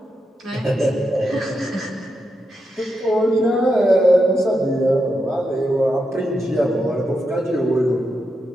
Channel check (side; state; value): both; normal; correlation 0.85